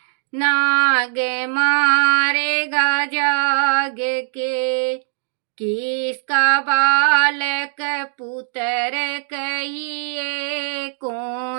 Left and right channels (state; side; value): silent; left; digital silence